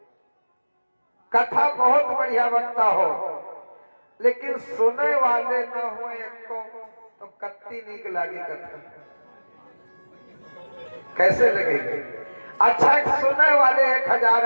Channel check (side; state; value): both; inverted; correlation -1.00